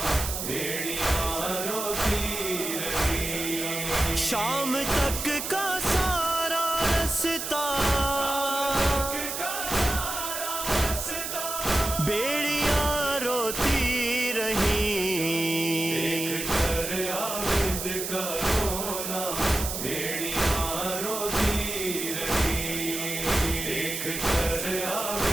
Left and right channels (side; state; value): right; noise; hiss, 4 dB below the sound